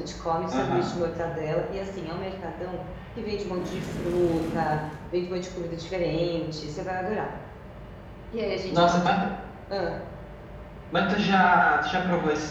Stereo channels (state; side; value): identical; both; correlation 1.00